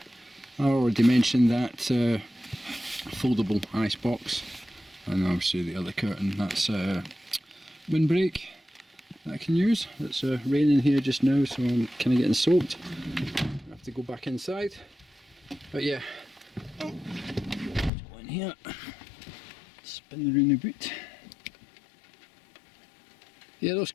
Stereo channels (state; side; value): drops out; right; at 17.9 s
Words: I already mentioned that foldable ice box, and obviously the other curtain, that's windbreak that I can use. It's raining here just now, so I'm kind of getting soaked. I have to go back inside, but yeah, go in here, spin around the boot. Yeah, those